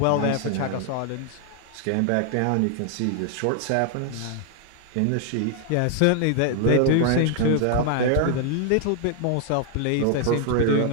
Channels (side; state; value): both; different; correlation 0.00